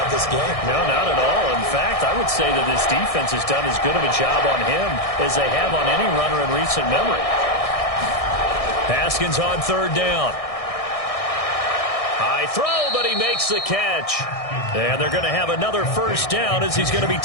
this game. No, not at all. In fact, I would say that this defense has done as good of a job on him as they have on any runner in recent memory. Haskins on 3rd down. High throw, but he makes the catch. And they're going to have another first down as he's going to be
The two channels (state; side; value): late; right; 1.6 ms